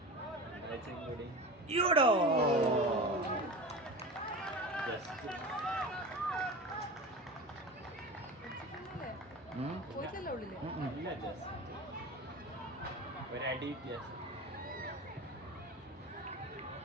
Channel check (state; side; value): normal; both; correlation 0.31